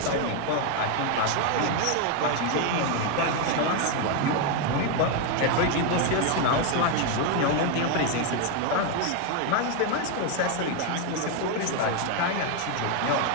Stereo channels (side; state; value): both; different; correlation 0.01